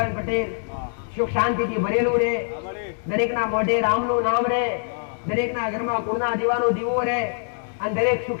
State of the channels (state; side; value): silent; right; digital silence